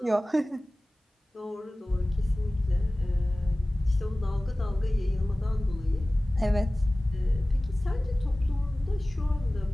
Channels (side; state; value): both; normal; correlation 0.98